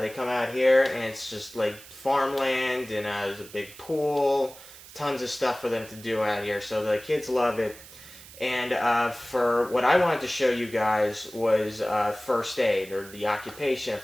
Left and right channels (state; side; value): noise; right; hiss, 18 dB below the sound